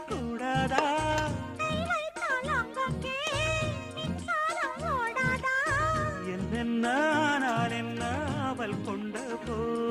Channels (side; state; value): both; identical; correlation 1.00